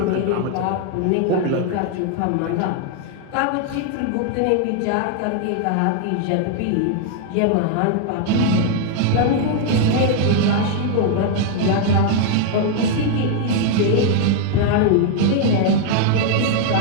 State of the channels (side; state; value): both; different; correlation 0.00